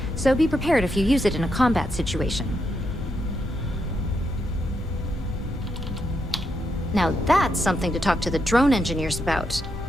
so be prepared if you use it in a combat situation. Now that's something to talk to the drone engineers about.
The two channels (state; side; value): normal; both; correlation 0.81